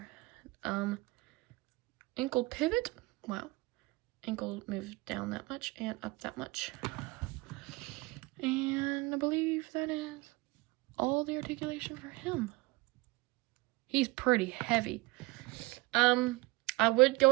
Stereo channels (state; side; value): quieter; left; 23.2 dB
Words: Ankle pivot. Wow. Ankle moved down that much and up that much. And I believe that is all the articulation for him. He's pretty heavy. I would go